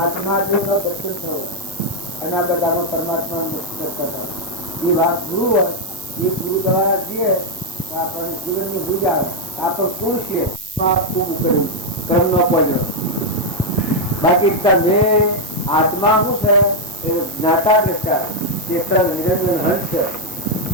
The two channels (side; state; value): right; noise; hiss, 15 dB below the sound